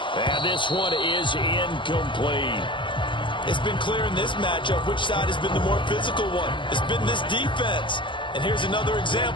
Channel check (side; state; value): right; late; 0.24 ms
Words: And this one is incomplete. It's been clear in this matchup which side has been the more physical one. It's been this defense. And here's another